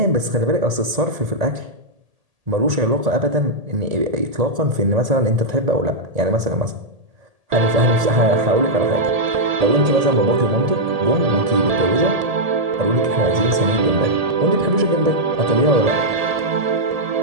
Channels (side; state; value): left; late; 1.8 ms